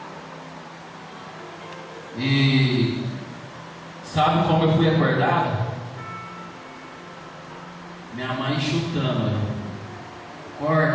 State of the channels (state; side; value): identical; both; correlation 1.00